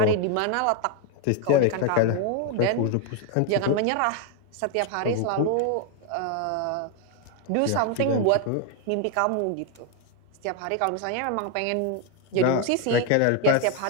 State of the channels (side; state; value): both; different; correlation 0.01